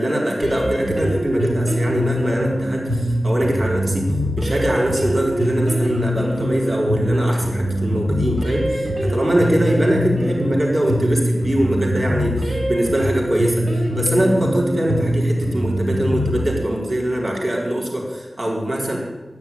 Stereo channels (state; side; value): normal; both; correlation 0.94